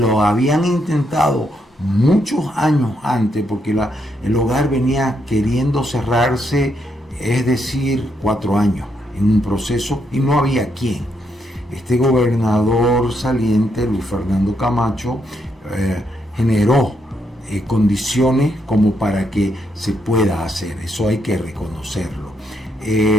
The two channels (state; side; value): normal; both; correlation 0.78